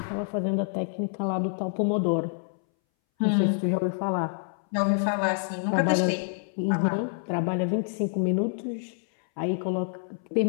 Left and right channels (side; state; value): right; silent; 60 dB below the other